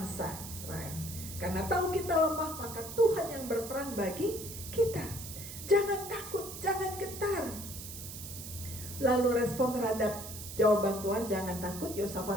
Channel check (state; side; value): noise; right; hiss, 10 dB below the sound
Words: Israel. Karena tahu kita lemah, maka Tuhan yang berperang bagi kita. Jangan takut, jangan getar. Lalu respon terhadap jawaban Tuhan, jangan takut,